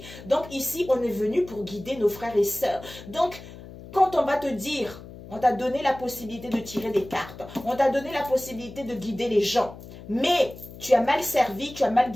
Donc ici, on est venu pour guider nos frères et sœurs. Donc, quand on va te dire, on t'a donné la possibilité de tirer des cartes, on t'a donné la possibilité de guider les gens, mais tu as mal servi, tu as mal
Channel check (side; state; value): left; noise; hum, 16 dB below the sound